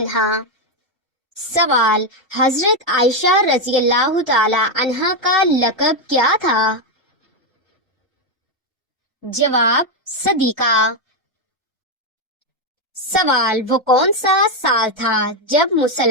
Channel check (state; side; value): normal; both; correlation 0.05